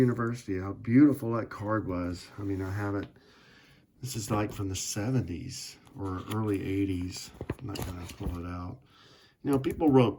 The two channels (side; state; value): both; identical; correlation 1.00